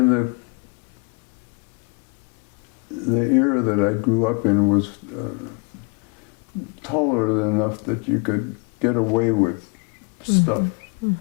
the era that I grew up in was tolerant enough that you could get away with stuff.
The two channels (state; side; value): quieter; right; 32.8 dB